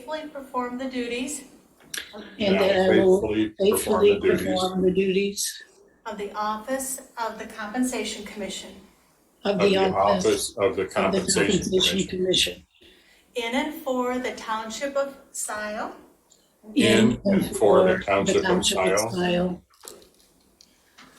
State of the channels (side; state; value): both; identical; correlation 1.00